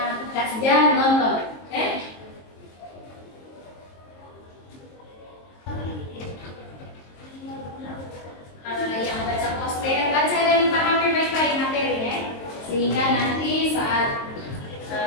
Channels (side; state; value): right; late; 23 ms